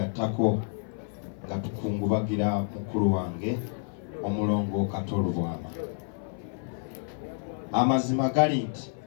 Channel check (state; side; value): silent; right; 57 dB below the other